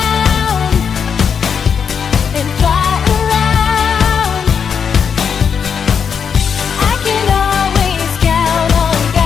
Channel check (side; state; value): right; quieter; 6.9 dB